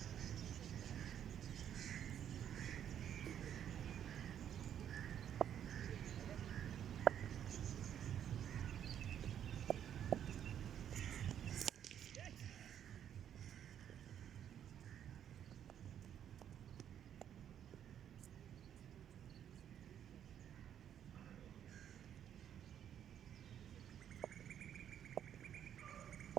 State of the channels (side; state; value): left; quieter; 9.6 dB